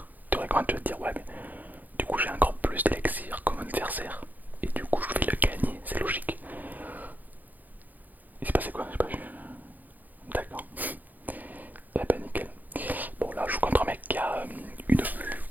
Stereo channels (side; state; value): left; late; 0.083 ms